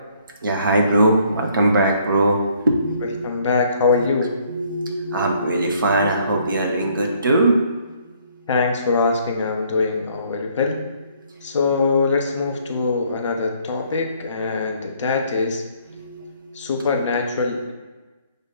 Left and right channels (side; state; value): both; inverted; correlation -0.63